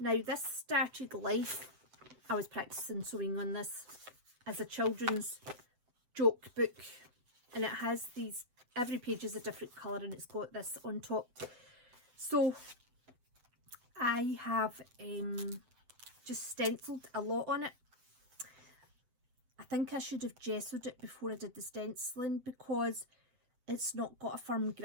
this started life, I was practicing sewing on this as a children's joke book, and it has these, every page is a different colour, and it's got this on top. So I have just stenciled a lot on it. I think I should have gessoed it before I did the stenciling, because it's not got a firm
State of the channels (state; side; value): late; left; 8.1 ms